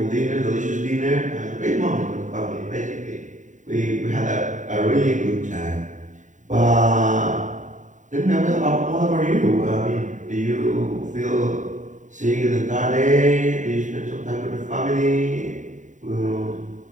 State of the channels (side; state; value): left; late; 0.36 ms